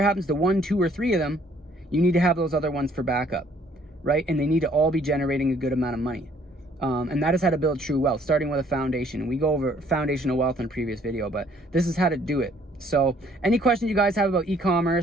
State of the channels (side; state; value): both; normal; correlation 0.61